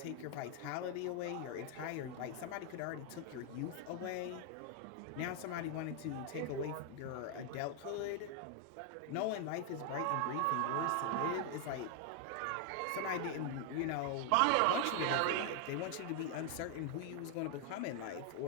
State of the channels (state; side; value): different; both; correlation 0.00